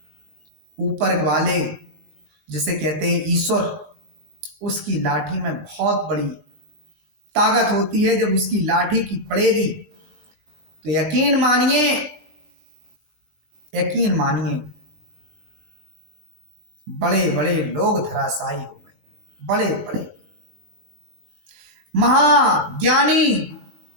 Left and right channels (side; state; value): left; late; 19 ms